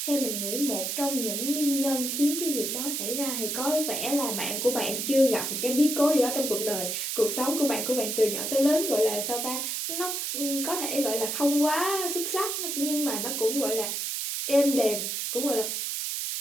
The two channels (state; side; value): noise; right; hiss, 2 dB below the sound